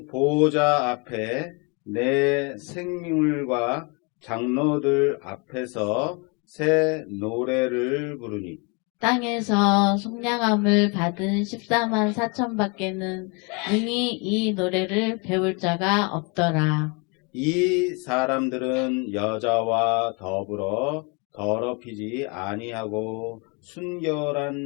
보호자 앞에 내 생물과 장로들 앞에서 새 노래를 부르니 땅에서 속량함을 받은 14만 4천 밖에는 능히 이 노래를 배울 자가 없더라. 이 사람들은 여자와 더불어 더럽히지 아니하고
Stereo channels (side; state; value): right; quieter; 31.8 dB